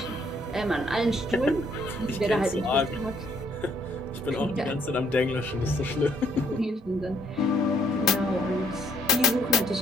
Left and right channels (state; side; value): normal; both; correlation 0.66